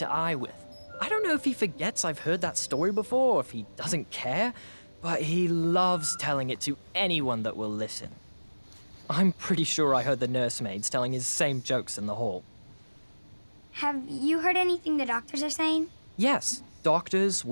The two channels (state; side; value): inverted; both; correlation -1.00